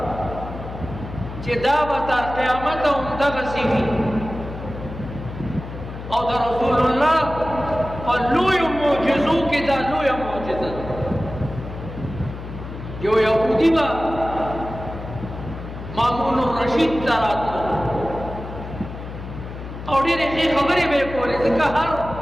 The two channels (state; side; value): noise; left; hum, 10 dB below the sound